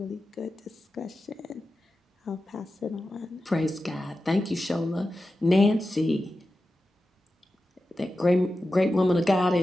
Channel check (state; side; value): normal; both; correlation 0.92